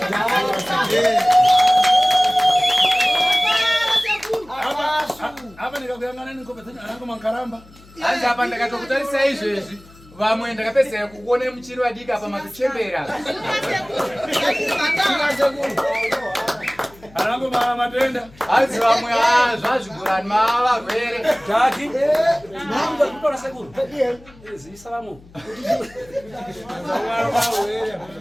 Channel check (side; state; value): left; noise; hum, 24 dB below the sound